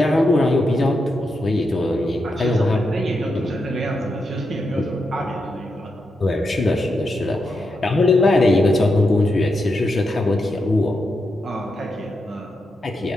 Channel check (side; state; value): both; normal; correlation 0.85